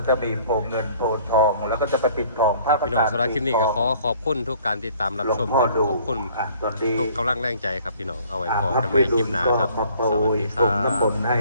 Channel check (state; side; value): inverted; both; correlation -0.56